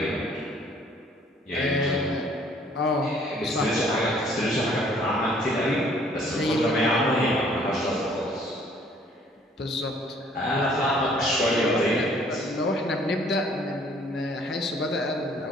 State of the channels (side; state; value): both; normal; correlation 0.59